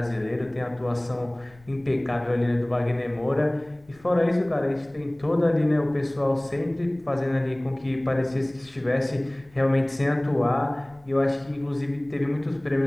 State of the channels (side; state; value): left; noise; rumble, 28 dB below the sound